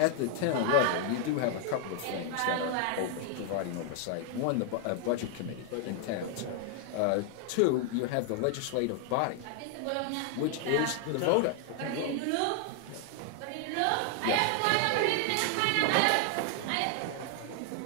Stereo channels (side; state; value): both; different; correlation 0.00